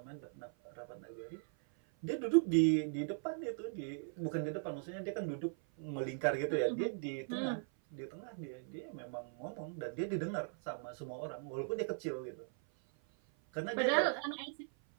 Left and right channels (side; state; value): left; silent; 52 dB below the other